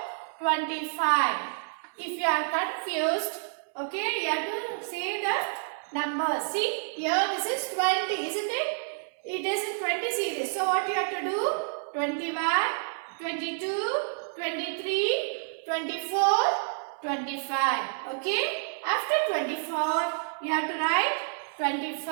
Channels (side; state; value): left; silent; digital silence